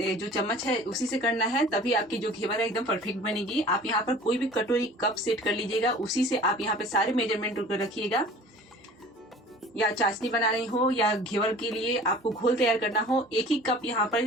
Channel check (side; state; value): both; normal; correlation 0.45